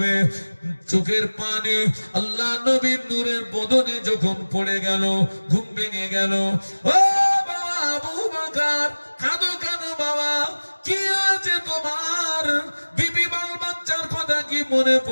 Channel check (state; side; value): inverted; both; correlation -1.00